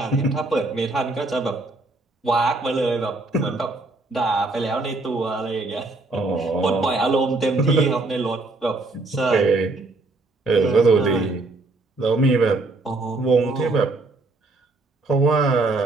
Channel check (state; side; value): quieter; left; 3.2 dB